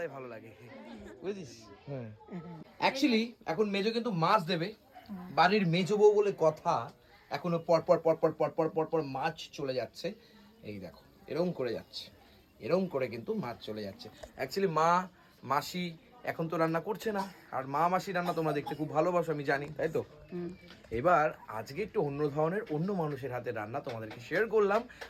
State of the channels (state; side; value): identical; both; correlation 1.00